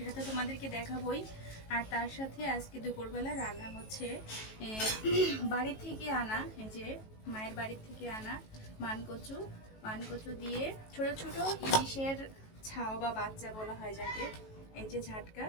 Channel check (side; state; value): right; late; 18 ms